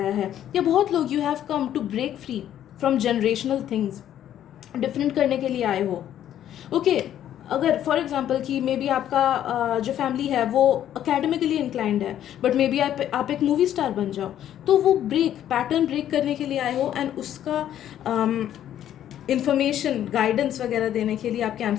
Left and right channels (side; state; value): right; quieter; 11.1 dB